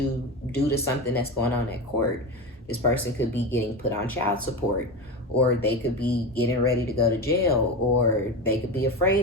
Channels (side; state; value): both; normal; correlation 0.22